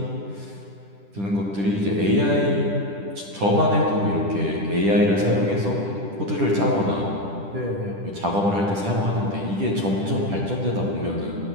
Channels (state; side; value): late; left; 10 ms